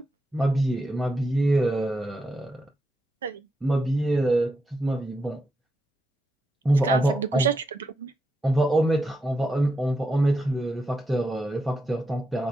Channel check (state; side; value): normal; both; correlation 0.85